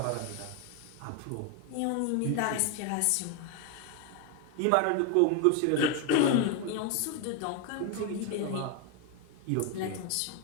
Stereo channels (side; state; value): both; different; correlation 0.01